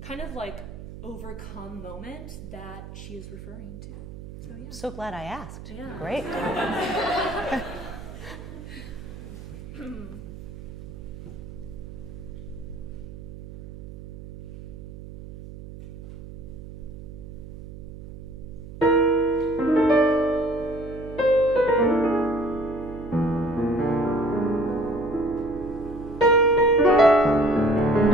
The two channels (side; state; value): right; noise; hum, 13 dB below the sound